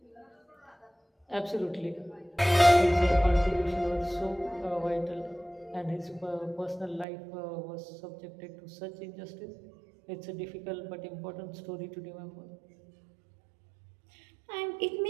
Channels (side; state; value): left; drops out; at 7.1 s